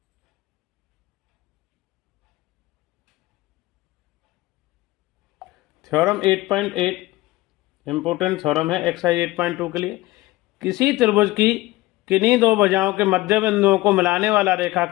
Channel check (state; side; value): quieter; right; 18.9 dB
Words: थ्योरम 8.8 इंपोर्टेंट थ्योरम है एक्सरसाइज 8.2 के लिए। किसी त्रिभुज की किन्हीं दो भुजाओं के मध्य बिंदुओं को मिलाने वाला